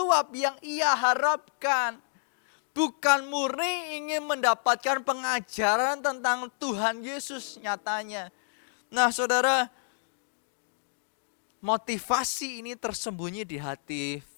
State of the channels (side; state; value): right; silent; digital silence